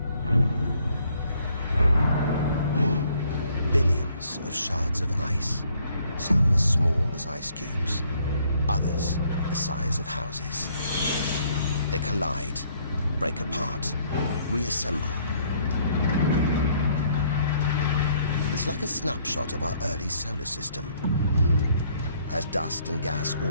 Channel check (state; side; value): inverted; both; correlation -0.66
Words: Billions of shards of ice, some as small as ice cubes, others the size of houses. They collide, break apart, reassemble. It's like a snapshot of our early solar system, as dust and gas